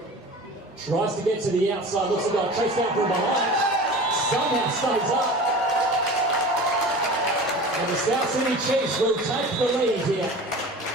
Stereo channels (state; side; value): normal; both; correlation 0.37